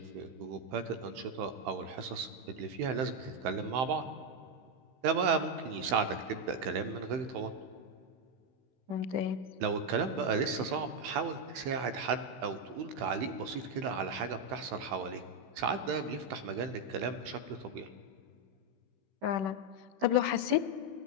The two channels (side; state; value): left; late; 16 ms